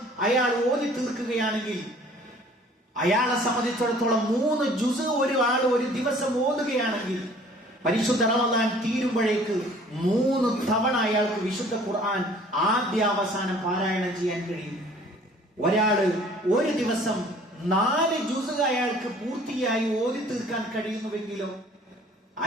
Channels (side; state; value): both; normal; correlation 0.53